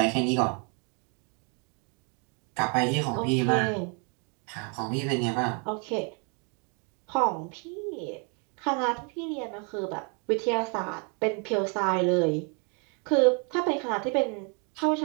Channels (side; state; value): left; quieter; 36.6 dB